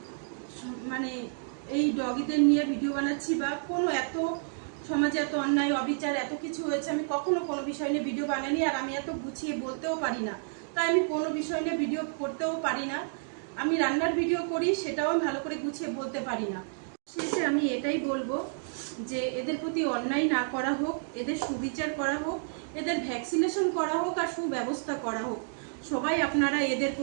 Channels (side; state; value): left; silent; digital silence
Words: মানে এই ডগিদের নিয়ে ভিডিও বানাচ্ছি, বা কোনো এত সমাজে এত অন্যায় অবিচার এত কিছু হয়েছে, আমি কখনো কোনো বিষয় নিয়ে ভিডিও বানাইনি। আর আমি এত গুছিয়ে বলতেও পারি না, তাই আমি কোনো বিষয় নিয়ে ভিডিও করতেও পারি না। আমি রান্নার ভিডিও করি, সেটাও আমি ভালো করে গুছিয়ে বলতে পারি না। শেষে আমি এটাই বলবো যে এদের প্রতি অন্যায় না করা হোক, এদের সুবিচার করা হোক, এদের ভ্যাকসিনেশন করা হোক আর সুব্যবস্থা করা হোক। সবাই আপনারা এদের